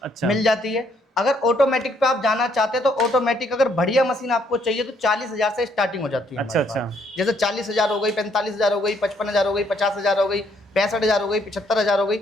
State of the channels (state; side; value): normal; both; correlation 0.69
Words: मिल जाती है। अगर ऑटोमेटिक पे आप जाना चाहते हैं तो ऑटोमेटिक अगर बढ़िया मशीन आपको चाहिए तो 40,000 से स्टार्टिंग हो जाती है। अच्छा अच्छा। जैसे 40,000 हो गई, 45,000 हो गई, 55,000 हो गई, 50,000 हो गई, 65,000 हो गई, 75,000 हो गई,